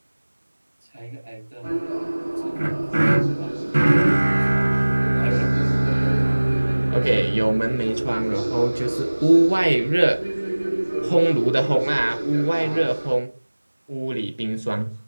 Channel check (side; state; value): both; inverted; correlation -1.00